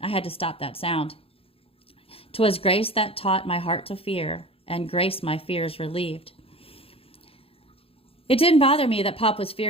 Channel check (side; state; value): right; late; 0.27 ms